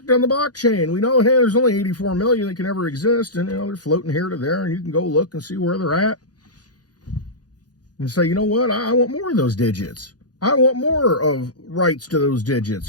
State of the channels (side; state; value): right; late; 0.69 ms